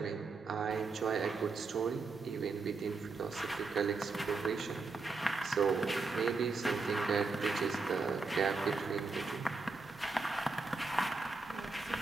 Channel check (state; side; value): quieter; left; 4.0 dB